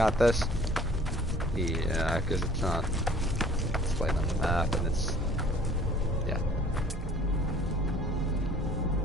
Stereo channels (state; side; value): normal; both; correlation 0.52